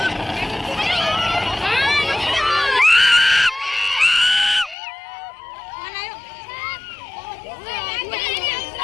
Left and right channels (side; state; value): right; drops out; at 4.8 s